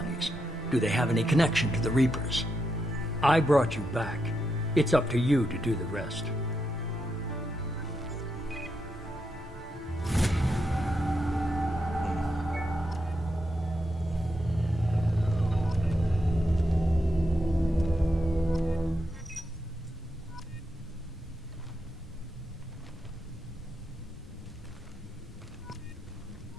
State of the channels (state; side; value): normal; both; correlation 0.83